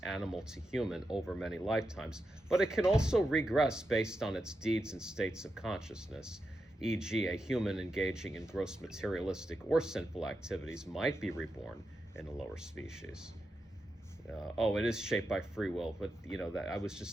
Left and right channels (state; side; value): normal; both; correlation 0.88